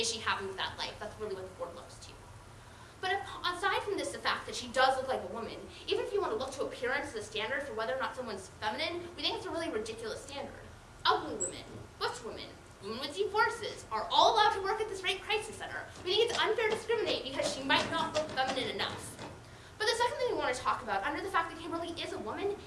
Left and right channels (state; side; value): identical; both; correlation 1.00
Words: she happy with that life? That's really what the board looks to. But aside from this, the fact that she does look like a woman, even if you want to look to appearance as a standard for whether or not someone's feminine, we think it's a really ridiculous standard. Ugly women, butch women, women with deep voices are all allowed to work at this rape crisis center. We think it's unfair to discriminate because she might not look feminine enough. But the second thing we want to talk about, under the fact that Kimberly is a woman,